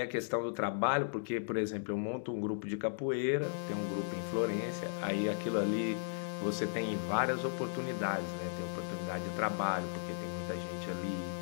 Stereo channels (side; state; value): right; silent; digital silence